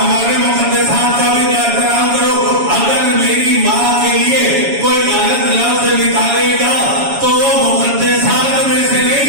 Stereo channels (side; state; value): left; late; 7.2 ms